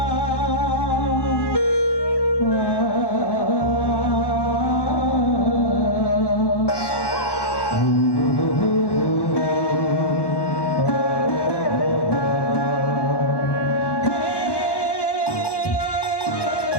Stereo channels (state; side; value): late; right; 1.1 ms